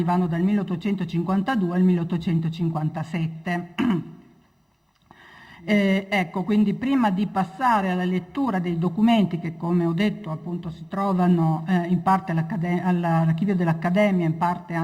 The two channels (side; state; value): both; identical; correlation 1.00